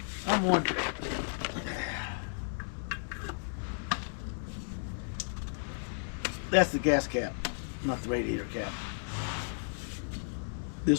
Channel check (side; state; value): right; silent; 55 dB below the other